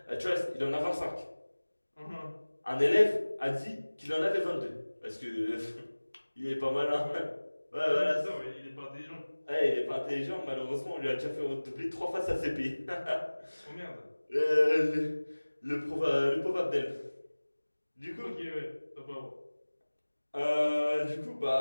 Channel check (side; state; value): both; inverted; correlation -1.00